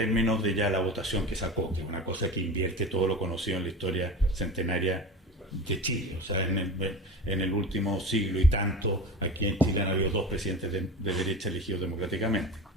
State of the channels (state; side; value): normal; both; correlation 0.31